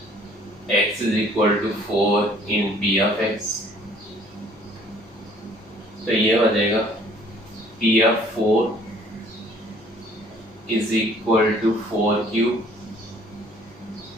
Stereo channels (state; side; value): normal; both; correlation 0.57